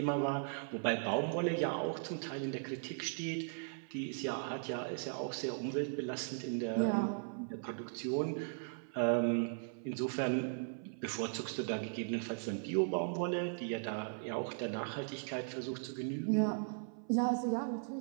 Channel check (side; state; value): left; silent; 52 dB below the other